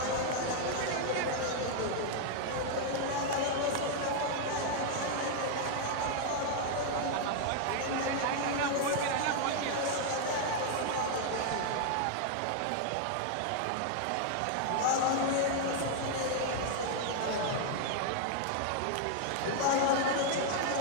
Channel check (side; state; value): both; different; correlation 0.00